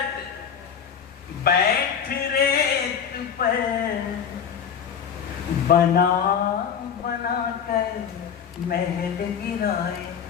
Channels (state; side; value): quieter; right; 7.7 dB